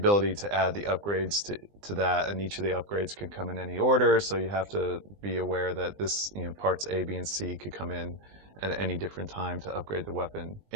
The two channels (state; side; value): late; left; 20 ms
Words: to add the upgrades to that, and each of the upgrades can come in any order, so you have to be aware that this, parts A, B, and C could come in at any different time to upgrade the weapon.